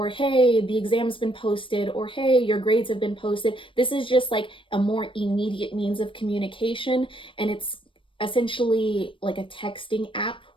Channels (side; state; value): right; late; 0.25 ms